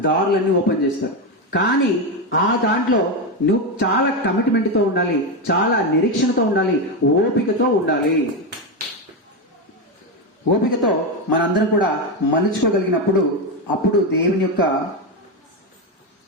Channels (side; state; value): both; normal; correlation 0.10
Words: దారులన్నీ ఓపెన్ చేస్తాడు. కానీ ఆ దాంట్లో నువ్వు చాలా కమిట్మెంట్తో ఉండాలి, చాలా నిరీక్షణతో ఉండాలి, ఓపికతో ఉండాలి. ఓపికతో మనందరం కూడా మలుచుకోగలిగినప్పుడు అప్పుడు దేవుని యొక్క